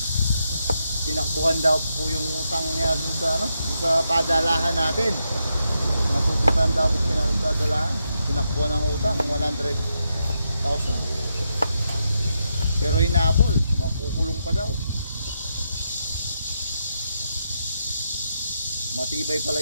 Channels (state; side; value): inverted; both; correlation -0.83